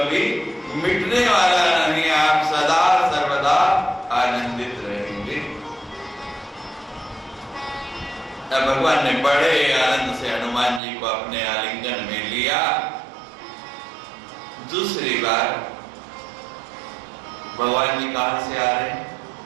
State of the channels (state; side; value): drops out; left; at 10.8 s